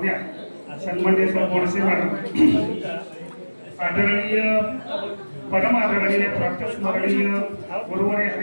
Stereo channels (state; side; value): inverted; both; correlation -1.00